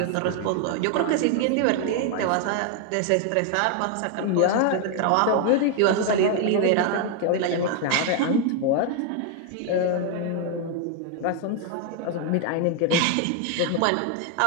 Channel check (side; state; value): both; different; correlation 0.00